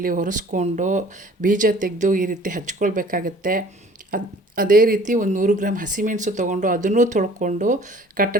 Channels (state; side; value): normal; both; correlation 0.51